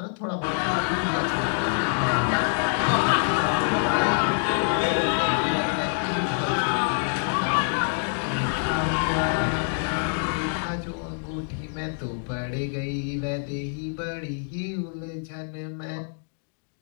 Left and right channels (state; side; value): silent; right; digital silence